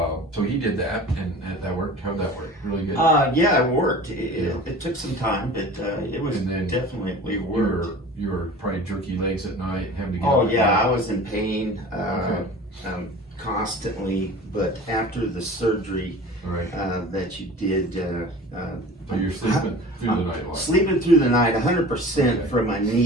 so he did that, and that worked. How'd that work? Really good? Yeah, it worked. It took some time, but it was definitely worked. You were probably jerky legs at night, having to get Oh yeah, I was in pain constantly, but after the surgery that you did, so you're sleeping through the night a lot. Sleeping through the night, 100% from my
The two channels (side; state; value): both; normal; correlation 0.40